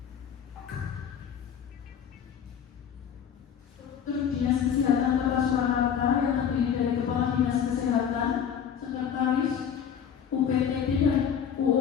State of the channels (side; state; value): right; quieter; 8.1 dB